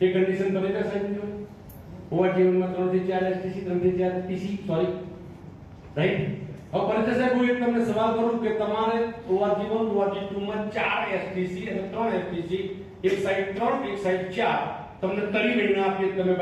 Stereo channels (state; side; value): identical; both; correlation 1.00